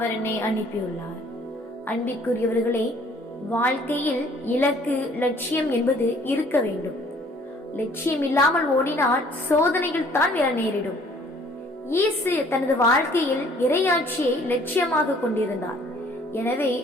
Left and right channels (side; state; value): both; normal; correlation 0.57